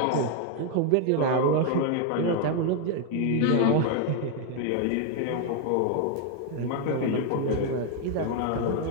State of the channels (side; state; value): both; different; correlation 0.01